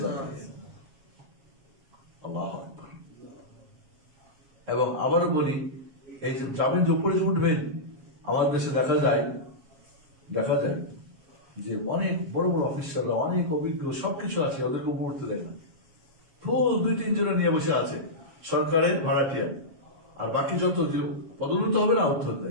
যাবে। আল্লাহু আকবার। এবং আবারও বলি, এই যে যাবেন, যে উপরে উঠবেন, আমাদের দেশে দেখা যায় যে অনেক বড় বড় অফিসাররা, অনেক অভিজ্ঞ, সবকিছু আছে, ওদেরকে উপরে উঠতে দেয় না। ফুল 2-3 জনে নিয়ে বসে আছে সরকারের ভাড়াটিয়া, আর বাকি যত পদোন্নত হবে না, উঠতে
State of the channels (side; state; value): left; late; 7.3 ms